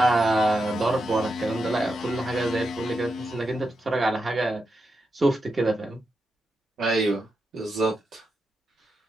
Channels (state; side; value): normal; both; correlation 0.87